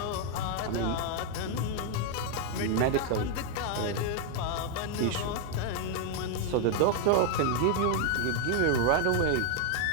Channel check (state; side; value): different; both; correlation 0.00